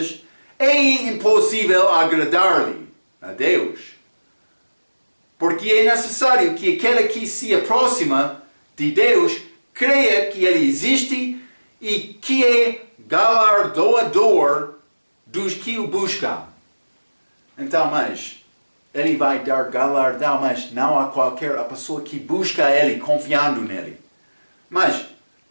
é impossível agradar-lhe a Deus. Porque é necessário que aquele que se aproxima de Deus creia que Ele existe e que é galardoador dos que o buscam. Então, mas Ele vai dar galardão, mas não a qualquer pessoa que busca Ele, confiando nele. Mas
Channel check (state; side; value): inverted; both; correlation -1.00